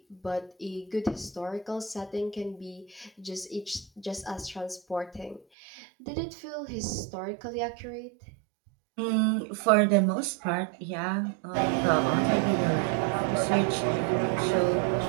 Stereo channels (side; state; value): left; drops out; at 5.5 s